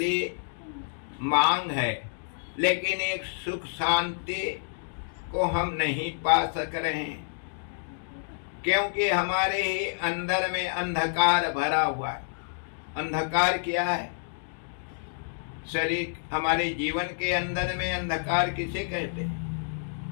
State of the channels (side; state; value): right; silent; digital silence